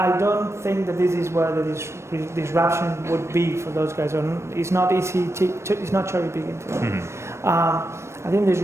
don't think that this is where the disruption would be for those guys. It's not easy. It's not cherry picking for them. I think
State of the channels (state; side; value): late; left; 0.13 ms